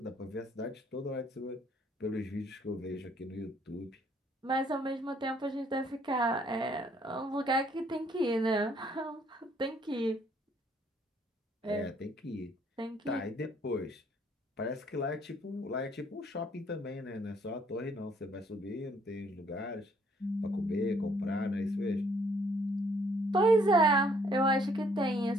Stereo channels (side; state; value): both; normal; correlation 0.65